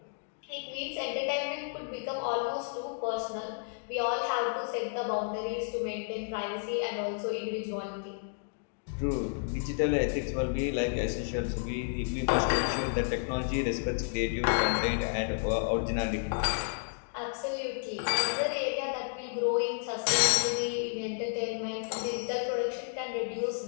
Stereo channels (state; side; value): silent; right; digital silence